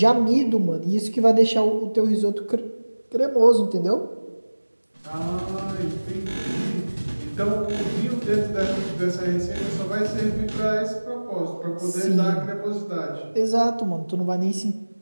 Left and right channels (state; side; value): inverted; both; correlation -1.00